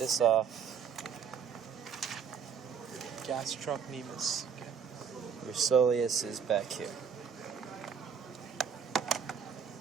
off, Gastrocnemius. Okay. your soleus is back here.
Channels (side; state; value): left; quieter; 7.0 dB